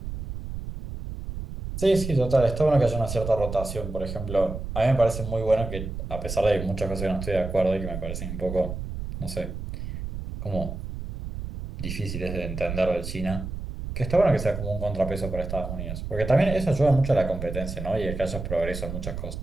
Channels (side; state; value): right; noise; rumble, 7 dB below the sound